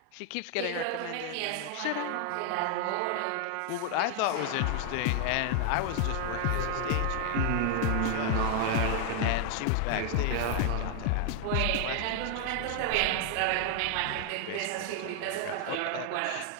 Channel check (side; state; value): both; different; correlation 0.00